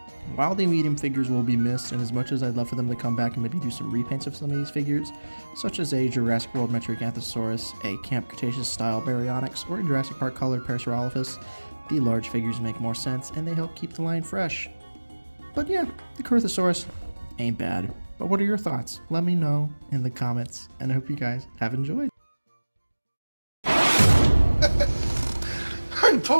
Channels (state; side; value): inverted; both; correlation -1.00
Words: While the medium figures will be missed, and as much as I'd love for them to come back and maybe do some repaints of some of these figures, such as a Jurassic World Metriacanthosaurus, a Camp Cretaceous style Baryonyx, or a Jurassic Park colored Pachysealosaurus, the large figures make more sense and they help keep the line fresh. But yeah, the Corythosaurus ain't bad. But what are your thoughts? Let me know in the comments, and I hope you guys have enjoyed. I'm